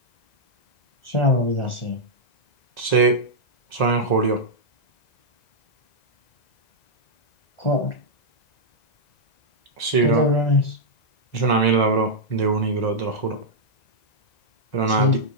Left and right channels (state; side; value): late; right; 1.9 ms